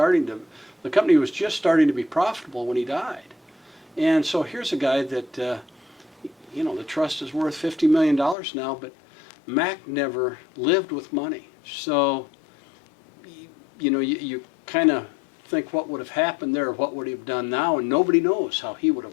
to, the company was just starting to be profitable when he died. And so here's a guy that, you know, the trust is worth $50 million now, but Mac never lived with money. So, you know, you kind of think what would have happened there, what would he have done now, and nobody knows how he would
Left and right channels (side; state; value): right; drops out; at 8.3 s